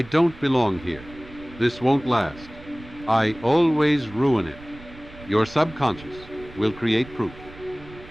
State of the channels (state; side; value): noise; right; rumble, 18 dB below the sound